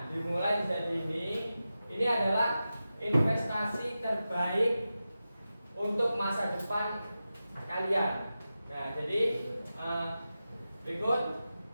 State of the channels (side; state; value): both; inverted; correlation -0.92